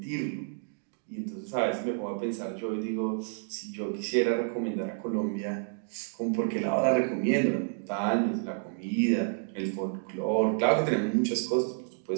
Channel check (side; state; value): left; silent; digital silence